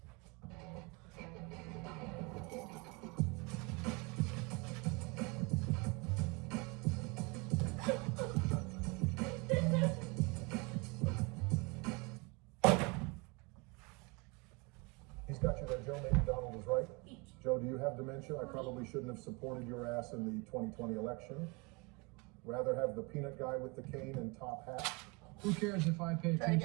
He's got you there, Joe. Maybe Donald was right. Joe, do you have dementia? I probably shouldn't have supported your ass in the 2020 election. Rather have the peanut guy with the cane and top hat. Who cares if I pay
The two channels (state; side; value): quieter; left; 28.2 dB